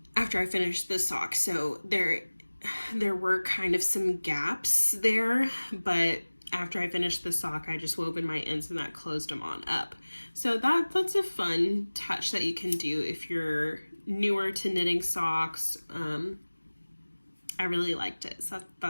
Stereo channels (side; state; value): both; inverted; correlation -1.00